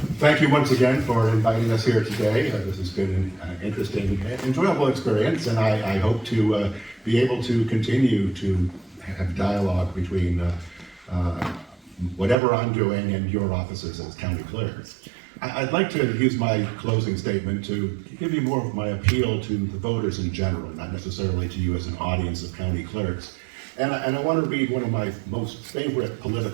thank you once again for inviting us here today. This has been an interesting, enjoyable experience, and I hope to be able to continue to have dialogue between whatever I'm doing and your offices as county clerks. I'd like to use my closing statement to give you more of my appeal to the voters in general, not necessarily to you as an audience of county clerks. And I want to read one of my most favorite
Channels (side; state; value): left; drops out; at 12.4 s